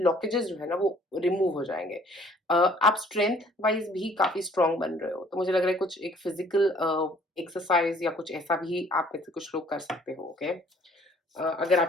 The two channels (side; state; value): both; normal; correlation 0.57